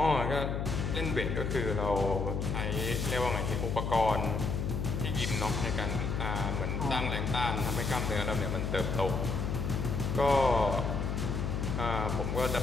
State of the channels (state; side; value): noise; left; hum, 1 dB below the sound